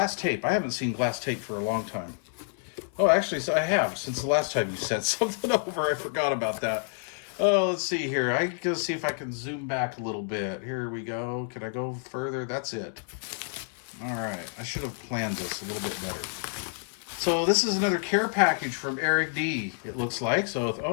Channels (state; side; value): silent; right; 59 dB below the other